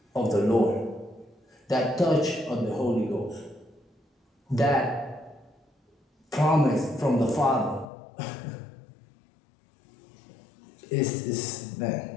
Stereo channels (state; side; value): drops out; right; at 7.9 s